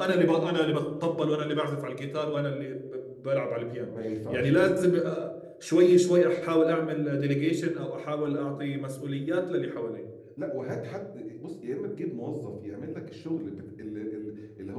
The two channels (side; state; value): both; identical; correlation 1.00